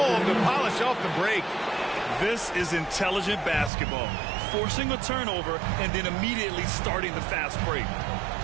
to polish off the break. This is intelligent basketball, forcing a turnover and then immediately starting the fast break.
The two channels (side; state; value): left; drops out; at 3.7 s